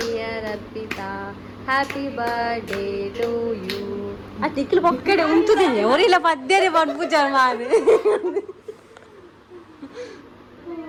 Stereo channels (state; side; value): identical; both; correlation 1.00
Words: Arpita, happy birthday to you. ಆ ಟಿಕ್ಲು ಪೊಕ್ಕಡೆ ಉಂಟುದಿಲ್ಲ ಅವರಿಲ್ಲ ಪದ್ಯನೇ ಪಡ್ಪುಜ ಮಾರು.